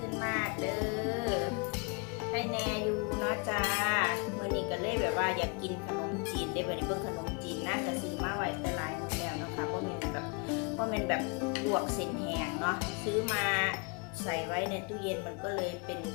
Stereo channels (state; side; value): quieter; right; 33.9 dB